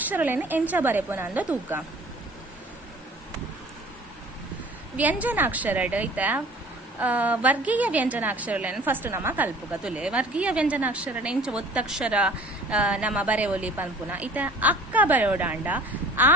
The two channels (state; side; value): normal; both; correlation 0.48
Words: ಎಂಚ ಬರೆಪುನಂದ ತೂಕ ವ್ಯಂಜನಾಕ್ಷರಡ್ ಐತ ವರ್ಗೀಯ ವ್ಯಂಜನಾಕ್ಷರಗಳನ್ನು ಫಸ್ಟ್ ನಮ್ಮ ಕಲ್ಪುಗ ತುಲೆ ವರ್ಗೀಯ ವ್ಯಂಜನಾಕ್ಷರ ಇಂಚ ಒತ್ತಕ್ಷರ ನಮ್ಮ ಬರೆವೊಲಿ ಪನ್ಪುನ ಇತ ಅಕ್ಕ ಬರೆಯೋಡಾಂಡ ಆ